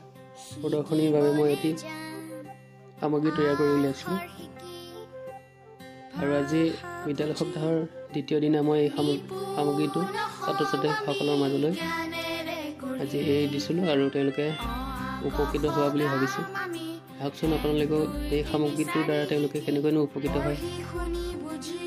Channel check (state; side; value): identical; both; correlation 1.00